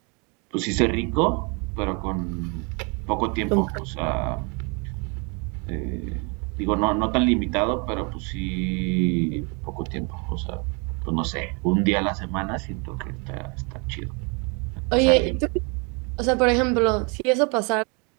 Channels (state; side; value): quieter; left; 32.9 dB